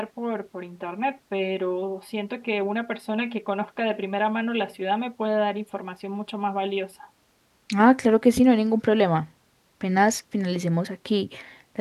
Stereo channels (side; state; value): both; identical; correlation 1.00